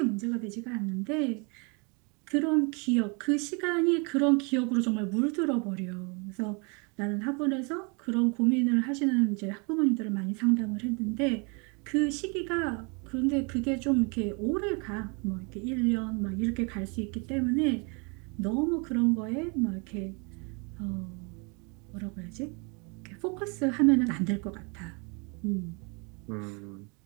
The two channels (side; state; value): left; quieter; 33.0 dB